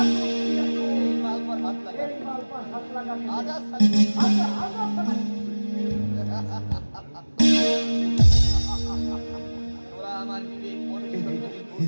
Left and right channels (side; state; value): both; inverted; correlation -1.00